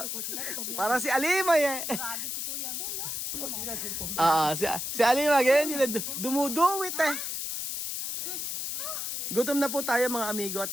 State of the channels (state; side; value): noise; left; hiss, 3 dB below the sound